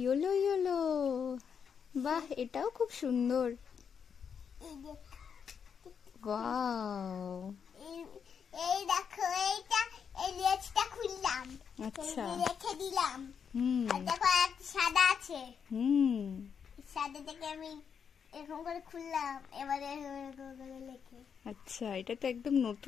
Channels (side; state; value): right; quieter; 7.0 dB